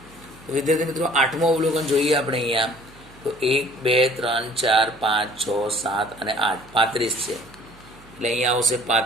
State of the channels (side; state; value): right; noise; hum, 24 dB below the sound